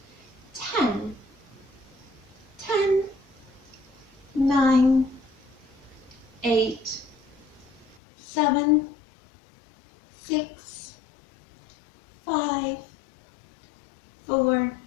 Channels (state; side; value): drops out; right; at 8.0 s